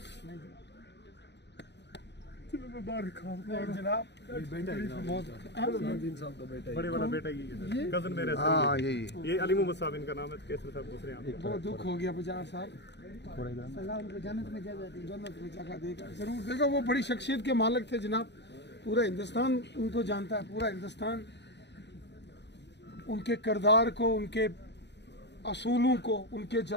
नहीं चलो मैं बाहर खाऊं। नहीं जनाब, बहुत बड़े वाला बेटा ही है सर, कजन मेरे सर। हाँ यही ये अली मोहम्मद साहब इनका नाम है, केसर साहब दूसरे यहाँ। बहुत दुख हो गया बजार साहब। अल्लाह उनको जन्नत में जगह देगा, जरूर देगा। वो बड़ी शख्सियत के मालिक थे जनाब, पूरा हिंदुस्तान उनको जानता है, पूरा हिंदुस्तान उनके किरदार को, उनके असूलों को, उनके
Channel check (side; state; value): right; late; 0.50 ms